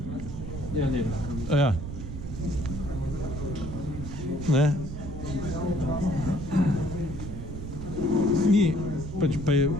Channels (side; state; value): right; noise; rumble, 8 dB below the sound